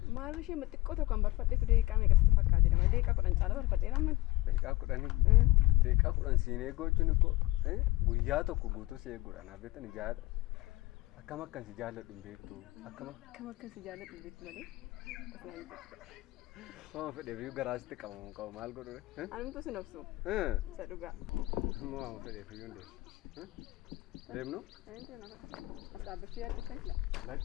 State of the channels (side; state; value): right; quieter; 19.5 dB